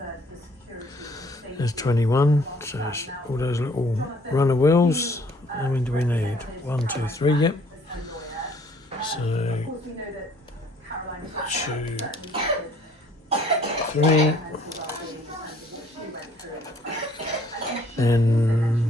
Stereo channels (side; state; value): both; normal; correlation 0.60